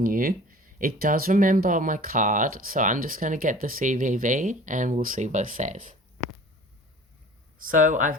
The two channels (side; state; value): both; normal; correlation 0.44